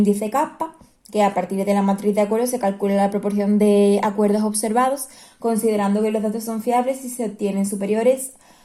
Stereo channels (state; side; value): identical; both; correlation 1.00